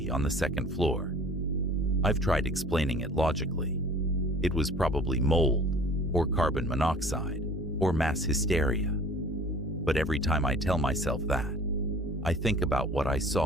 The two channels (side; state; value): both; normal; correlation 0.48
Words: on the second floor. I've tried explaining it logically. It was probably mold, or carbon monoxide, or mass hysteria. But every time I tell myself that, I think about what I